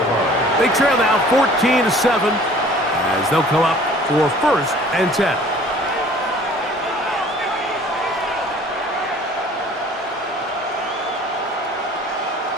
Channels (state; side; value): normal; both; correlation 0.50